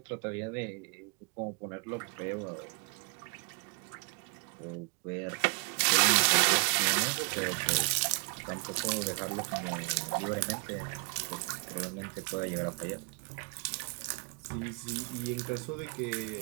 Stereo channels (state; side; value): quieter; left; 36.6 dB